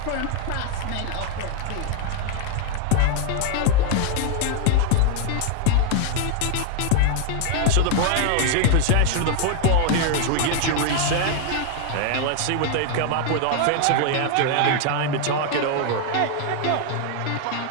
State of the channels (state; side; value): different; both; correlation 0.00